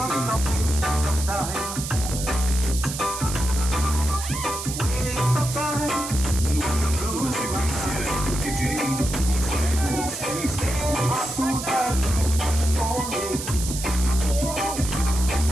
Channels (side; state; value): right; noise; hiss, 7 dB below the sound